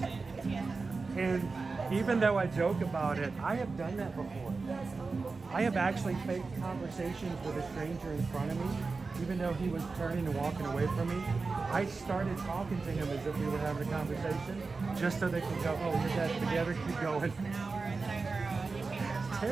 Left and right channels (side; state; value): left; quieter; 4.2 dB